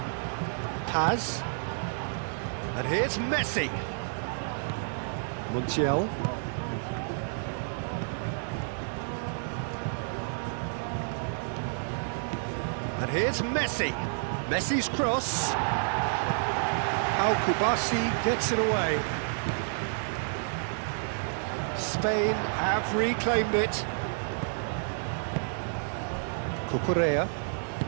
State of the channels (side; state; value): left; silent; digital silence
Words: Paz. And here's Messi. Montiel. And here's Messi. Messi's cross. Al-Kubasi gets it away. Spain have reclaimed it. Cucurella.